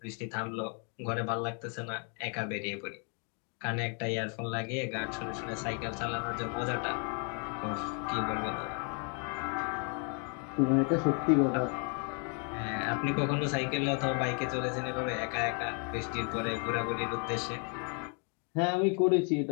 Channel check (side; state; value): right; quieter; 39.5 dB